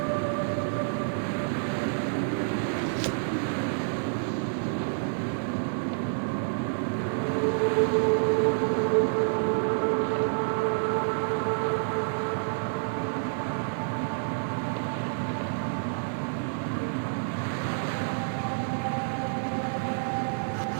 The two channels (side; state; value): left; silent; digital silence